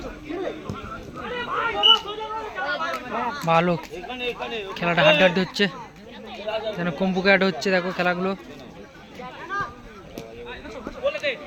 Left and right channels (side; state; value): both; identical; correlation 1.00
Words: ভালো খেলাটা হাড্ডাহাড্ডি হচ্ছে, যেন কম্পুকে অ্যাড হচ্ছে। দেখো খেলাগুলো